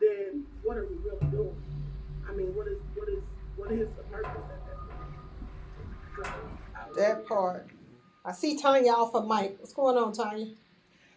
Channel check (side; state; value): both; identical; correlation 1.00